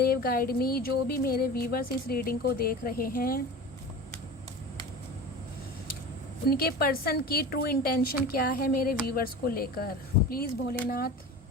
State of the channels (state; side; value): normal; both; correlation 0.33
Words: guide me. जो भी मेरे व्यूवर्स इस रीडिंग को देख रहे हैं, उनके पर्सन की ट्रू इंटेंशन क्या है मेरे व्यूवर्स को लेकर। प्लीज़ भोलेनाथ